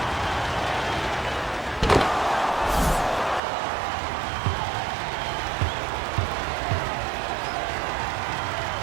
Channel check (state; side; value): drops out; left; at 3.4 s